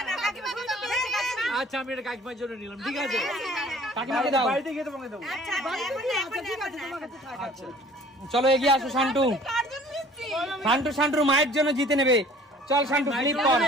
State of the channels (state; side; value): normal; both; correlation 0.51